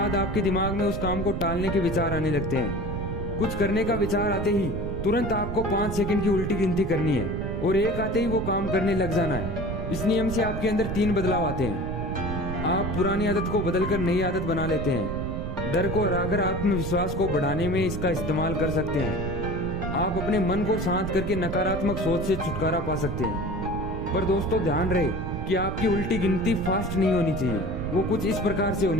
आपके दिमाग में उस काम को टालने के विचार आने लगते हैं। कुछ करने का विचार आते ही तुरंत आपको 5 सेकंड की उल्टी गिनती करनी है, और 1 आते ही वो काम करने लग जाना है। इस नियम से आपके अंदर 3 बदलाव आते हैं। आप पुरानी आदत को बदलकर नई आदत बना लेते हैं। डर को हराकर आत्मविश्वास को बढ़ाने में इसका इस्तेमाल कर सकते हैं। आप अपने मन को शांत करके नकारात्मक सोच से छुटकारा पा सकते हैं। पर दोस्तों ध्यान रहे कि आपकी उल्टी गिनती फास्ट नहीं होनी चाहिए, वो कुछ इस प्रकार से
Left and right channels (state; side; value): noise; right; rumble, 5 dB below the sound